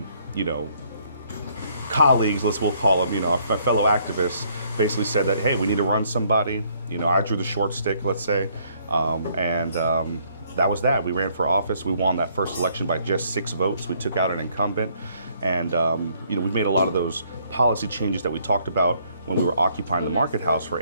colleagues, we'll call them, my fellow activists, basically said that, hey, we need to run somebody. I drew the short stick, let's say. That was that. We ran for office. We won that first election by just 6 votes. We took out an incumbent. And, we've made a lot of those policy changes that we talked about when we were occupying the Market House for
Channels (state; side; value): inverted; both; correlation -0.66